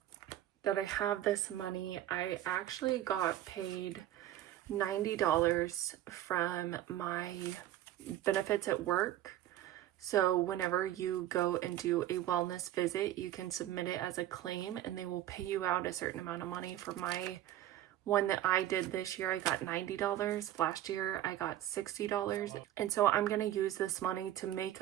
that I have this money, I actually got paid $90 from my benefits at work. So whenever you go and do a wellness visit, you can submit it as a claim and they will pay you out a certain amount of money. For my one that I did this year, I got $90. Last year, I got $60. And so I'm going to use this money to make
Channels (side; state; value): left; quieter; 13.0 dB